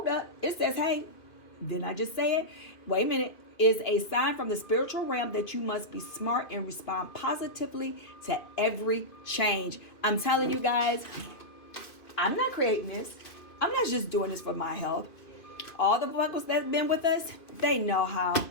up. It says, hey, didn't I just say it? Wait a minute. Is a sign from the spiritual realm that you must be smart and respond positively to every change. I'm telling you guys, I'm not creating this. I'm not just doing this for my health. All the buckles that's been with us, they know how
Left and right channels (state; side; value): late; right; 2.5 ms